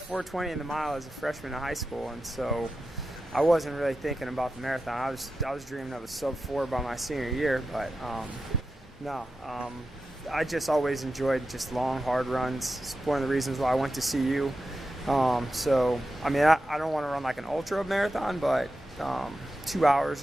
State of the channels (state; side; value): normal; both; correlation 0.91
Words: in the mile as a freshman in high school, and so I wasn't really thinking about the marathon. I was dreaming of a sub-4 by my senior year, but I just always enjoyed just long, hard runs. It's one of the reasons why I went to CU. I don't want to run like an ultra marathon, but 2